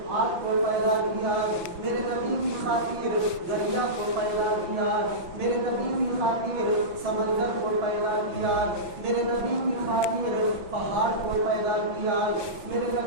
آگ کو پیدا کیا، میرے نبی کی خاطر دریا کو پیدا کیا، میرے نبی کی خاطر سمندر کو پیدا کیا، میرے نبی کی خاطر پہاڑ کو پیدا کیا، میرے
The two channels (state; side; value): late; left; 5.7 ms